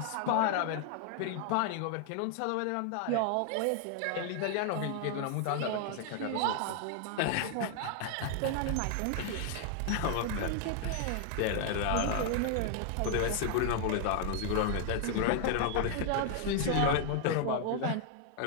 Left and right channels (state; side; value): different; both; correlation 0.00